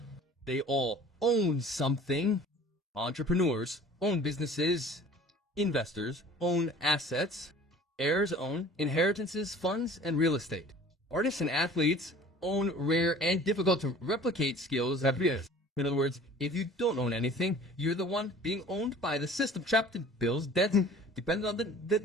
They all own something. Entrepreneurs own businesses. Investors own assets. Heirs own inheritances, funds, and real estate. Artists and athletes own rare and difficult to replicate skills that is. In other words, if you don't own anything, you're the one being owned by the system, trapped in bills, debts, dependent on the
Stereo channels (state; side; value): normal; both; correlation 0.47